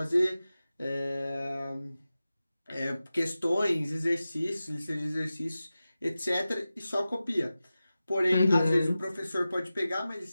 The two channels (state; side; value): inverted; both; correlation -0.95